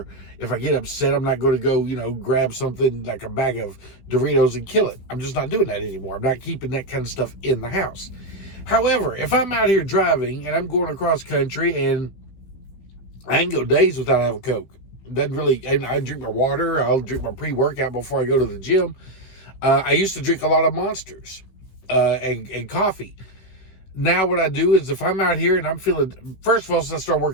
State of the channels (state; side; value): late; right; 16 ms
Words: if I get upset, I'm not going to go, grab something like a bag of Doritos and kill it. I'm just not doing that anymore. I'm not keeping that kind of stuff in the house. However, if I'm out here driving and I'm going across country and I can go days without having a Coke. Doesn't really, and I drink my water. I'll drink my pre-workout before I go to the gym. I used to drink a lot of Monsters and coffee. Now what I do is if I'm out here and I'm feeling, first of all, since I start